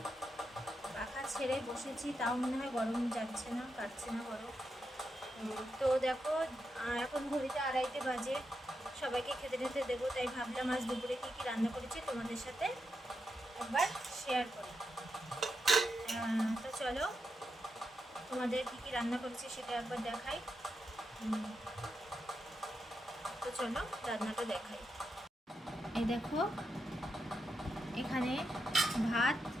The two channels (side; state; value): both; normal; correlation 0.85